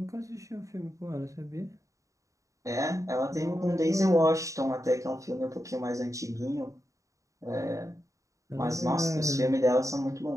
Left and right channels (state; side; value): late; left; 0.16 ms